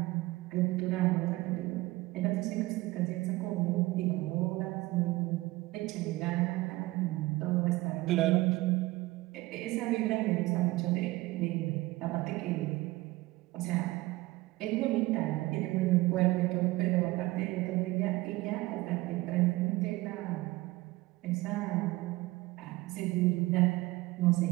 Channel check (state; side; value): quieter; left; 19.7 dB